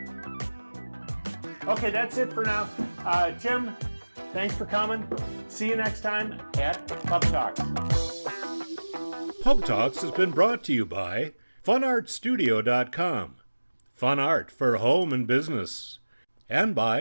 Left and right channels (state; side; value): inverted; both; correlation -1.00